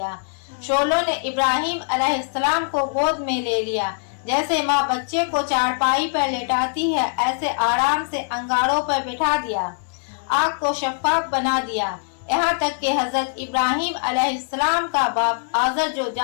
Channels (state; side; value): silent; right; digital silence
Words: شعلوں نے ابراہیم علیہ السلام کو گود میں لے لیا، جیسے ماں بچے کو چارپائی پر لٹاتی ہے ایسے آرام سے انگاروں پر بٹھا دیا۔ آگ کو شفاف بنا دیا، یہاں تک کہ حضرت ابراہیم علیہ السلام کا باپ آزر جو